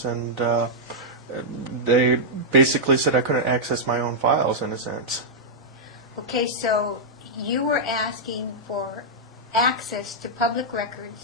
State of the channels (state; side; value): normal; both; correlation -0.08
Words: and they basically said I couldn't access my own files, in a sense. Okay, so you were asking for access to public